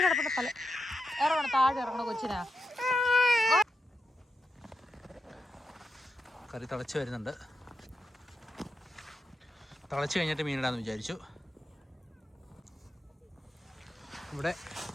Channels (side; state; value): both; normal; correlation 0.86